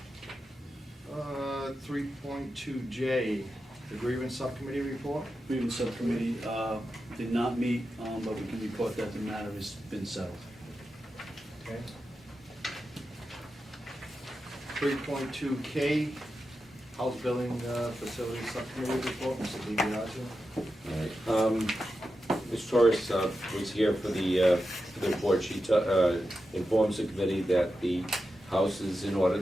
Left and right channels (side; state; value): both; normal; correlation 0.90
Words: 3.2J, the grievance subcommittee report. Grievance Subcommittee did not meet, but we can report that the matter has been settled. Okay. 3.2K, house building facility subcommittee report, Mr. DiBiasio. All right. Ms. Torres was here for the report. She informs the committee that the house is in order,